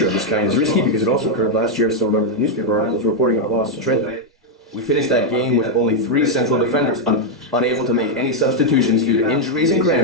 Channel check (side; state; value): both; normal; correlation 0.00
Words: of this kind is risky because it also occurred last year. I still remember the newspaper articles reporting our loss to Trent. We finished that game with only 3 central defenders, unable to make any substitutions due to injuries and